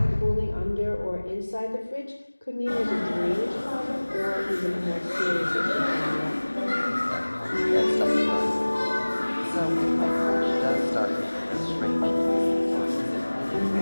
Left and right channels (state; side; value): inverted; both; correlation -1.00